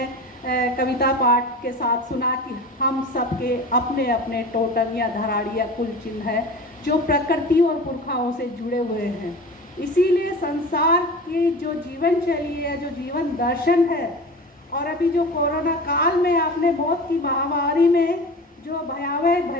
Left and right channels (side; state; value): both; normal; correlation 0.34